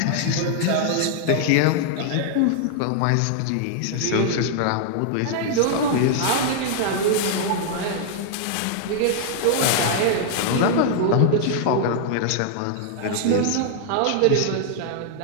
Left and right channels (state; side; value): different; both; correlation 0.00